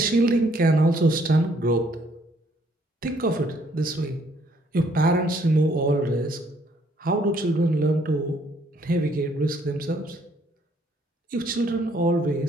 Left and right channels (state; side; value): normal; both; correlation 0.66